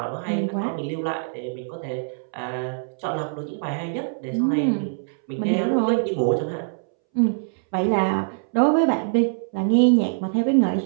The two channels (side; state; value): left; silent; 63 dB below the other